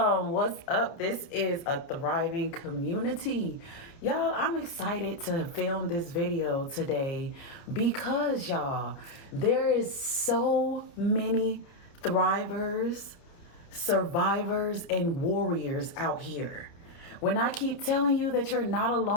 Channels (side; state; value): right; late; 29 ms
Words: What's up? This is a thriving community. Y'all, I'm excited to film this video today because, y'all, there is so many thrivers, survivors, and warriors out here. When I keep telling you that you're not